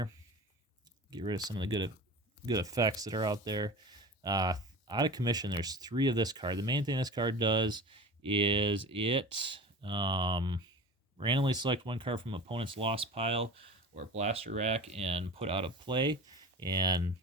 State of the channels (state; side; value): normal; both; correlation 0.35